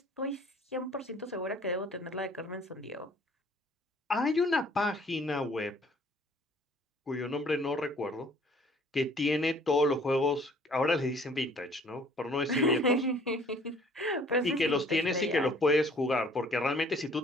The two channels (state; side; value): normal; both; correlation 0.56